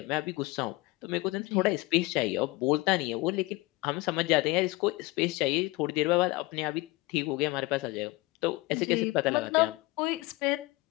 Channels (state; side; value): quieter; right; 21.9 dB